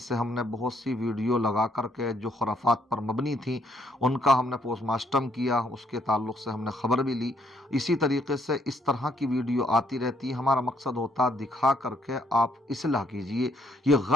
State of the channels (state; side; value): normal; both; correlation 0.70